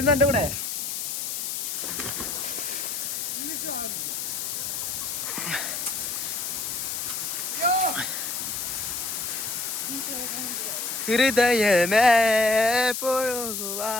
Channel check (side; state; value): left; noise; hiss, 3 dB below the sound